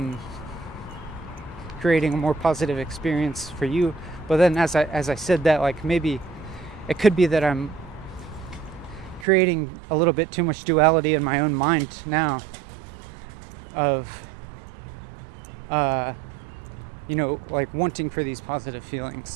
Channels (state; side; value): drops out; left; at 9.2 s